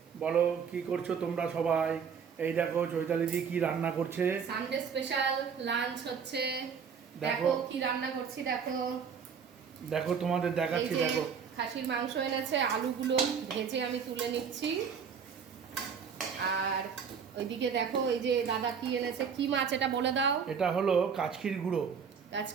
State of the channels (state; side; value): quieter; left; 6.6 dB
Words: বলো কি করছো তোমরা সবাই? এই দেখো চৈতালিদি কি রান্না করছে। সানডে স্পেশাল লাঞ্চ হচ্ছে। দেখো দেখো কি রান্না করছি, দেখো দেখো তোমাদের এই দেখাচ্ছি। যে দেখো খাসির মাংস এনেছে, আলুগুলো ভেজে আমি তুলে নিচ্ছি। আর ওইদিকে দেখো এই যে দাদা কি এনেছে, কি মাছ এটা বলে দাও। এটা হলো কাচকির গুঁড়ো।